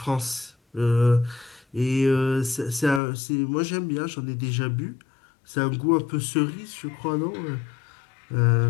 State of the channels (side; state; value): right; drops out; at 3.0 s